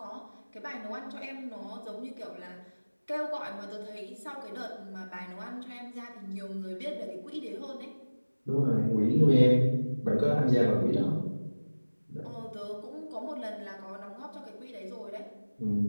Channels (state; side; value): inverted; both; correlation -1.00